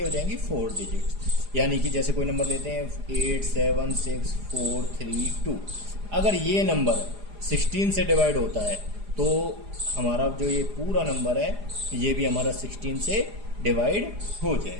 हो जाएंगी 4 डिजिट, यानी कि जैसे कोई नंबर लेते हैं 8, 7, 6, 4, 3, 2, अगर ये नंबर 16 से डिवाइड होता है तो हमारा जो ये पूरा नंबर है ये भी हमारा 16 से डिवाइड हो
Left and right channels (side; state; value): left; late; 4.9 ms